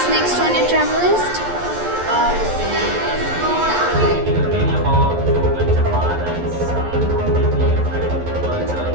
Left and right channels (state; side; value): late; left; 11 ms